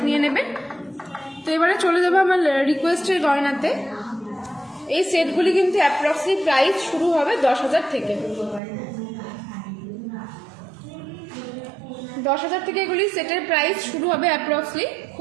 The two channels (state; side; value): drops out; left; at 8.6 s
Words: নিয়ে নেবেন। তো এবারে চলে যাবো আমার রিকোয়েস্টের গয়নাতে। এই সেটগুলি কিন্তু অ্যাপ্রক্সলি প্রাইস শুরু হবে 10,000 থেকে। 10,000 থেকে এগুলি সেটের প্রাইস শুরু হবে অ্যাপ্রক্সলি।